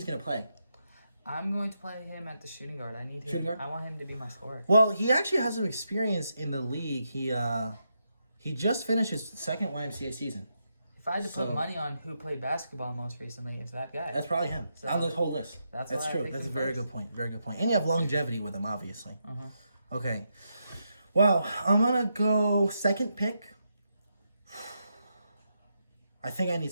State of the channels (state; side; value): inverted; both; correlation -0.83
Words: going to play? I'm going to play him at the shooting guard. I need him. Shooting guard? I want him to be my scorer. Well, he actually has some experience in the league. He just finished his second YMCA season. If I had to So- put money on who played basketball most recently, it's that guy. That's probably him. So, On the whole list. that's why I true. picked That's a him very first. good point. Very good point. And you have longevity with him, obviously. Uh-huh. Okay. Well, I'm going to go second pick. I think I need